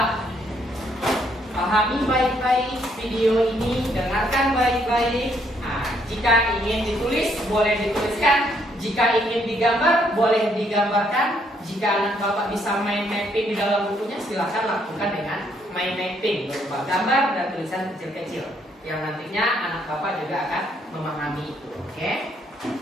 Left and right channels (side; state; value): both; normal; correlation 0.70